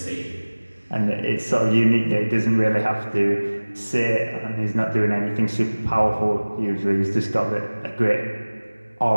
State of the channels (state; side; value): inverted; both; correlation -1.00